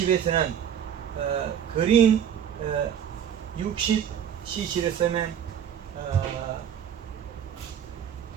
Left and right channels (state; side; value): quieter; left; 8.9 dB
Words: 그린 60cc를 쓰면